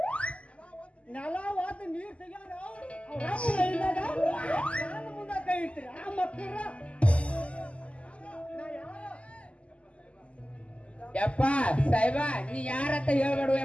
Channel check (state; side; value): late; right; 0.060 ms